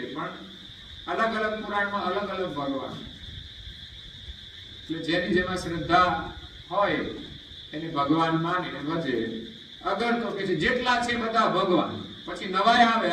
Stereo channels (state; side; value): identical; both; correlation 1.00